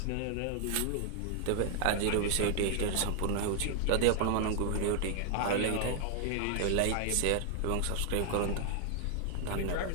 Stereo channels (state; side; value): different; both; correlation 0.00